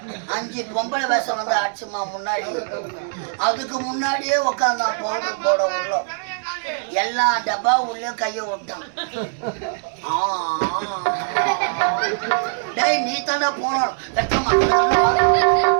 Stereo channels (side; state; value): left; silent; digital silence